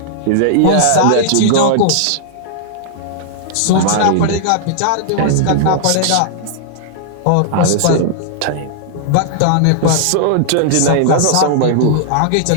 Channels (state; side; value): different; both; correlation -0.01